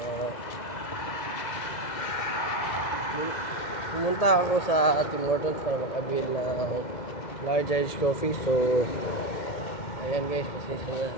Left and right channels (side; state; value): right; late; 2.0 ms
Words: Pumunta ako sa Tim Hortons para makabil ng large iced coffee. So ayan guys, kasi